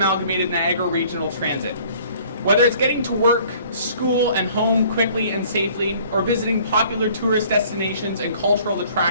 Niagara Regional Transit. Whether it's getting to work, school, and home quickly and safely, or visiting popular tourist destinations and cultural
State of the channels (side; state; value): both; inverted; correlation -0.54